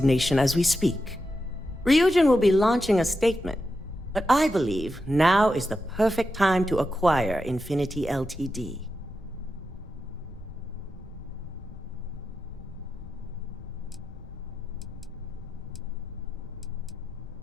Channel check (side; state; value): both; normal; correlation 0.88